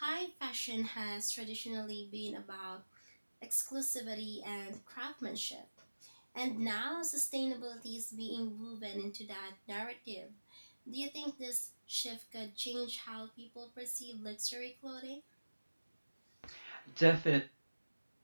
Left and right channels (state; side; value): inverted; both; correlation -1.00